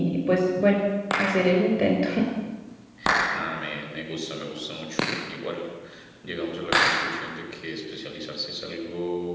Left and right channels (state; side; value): identical; both; correlation 1.00